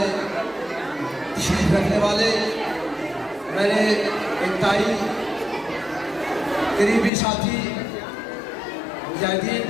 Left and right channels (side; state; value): right; drops out; at 7.1 s